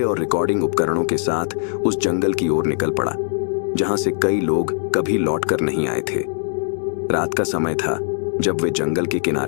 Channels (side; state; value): right; silent; digital silence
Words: और रिकॉर्डिंग उपकरणों के साथ उस जंगल की ओर निकल पड़ा, जहां से कई लोग कभी लौटकर नहीं आए थे। रात का समय था जब वे जंगल के